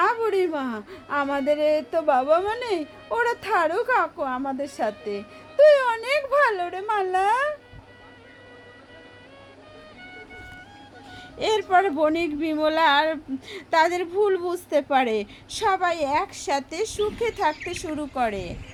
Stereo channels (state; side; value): identical; both; correlation 1.00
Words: বুড়িমা, আমাদের তো বাবা মা নেই, ওরা থারুক কাকু আমাদের সাথে। তুই অনেক ভালো রে মালা। এরপর বণিক বিমলা আর তাদের ভুল বুঝতে পারে, সবাই একসাথে সুখে থাকতে শুরু করে।